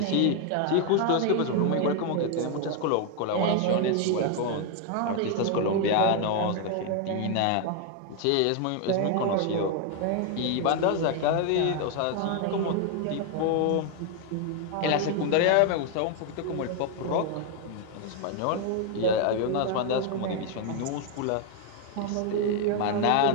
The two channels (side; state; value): both; different; correlation 0.01